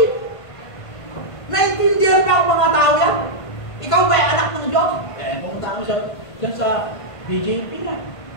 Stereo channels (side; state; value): right; late; 1.5 ms